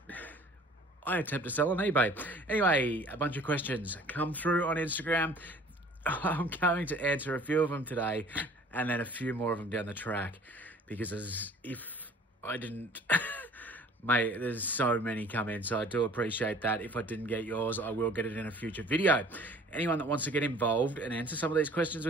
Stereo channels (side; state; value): both; normal; correlation 0.51